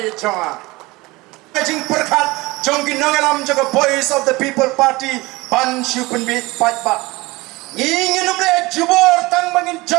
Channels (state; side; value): quieter; left; 21.9 dB